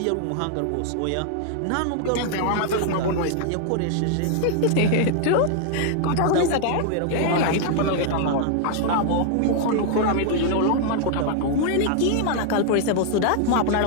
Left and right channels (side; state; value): both; different; correlation 0.00